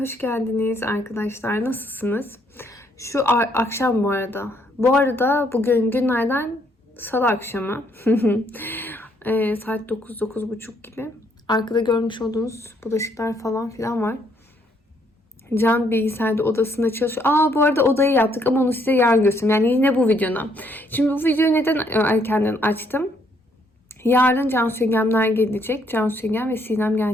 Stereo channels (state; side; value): normal; both; correlation 0.70